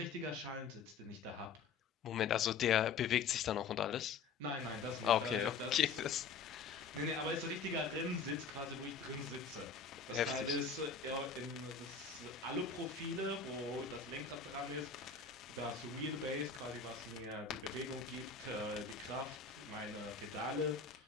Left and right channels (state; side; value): quieter; right; 5.4 dB